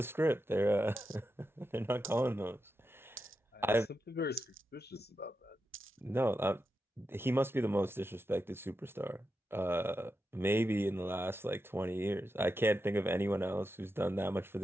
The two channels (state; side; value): normal; both; correlation 0.88